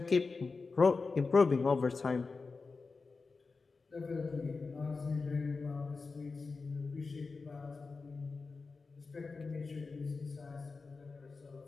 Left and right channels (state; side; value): quieter; right; 4.3 dB